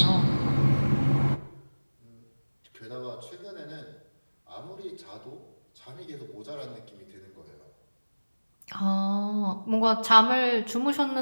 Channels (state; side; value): inverted; both; correlation -1.00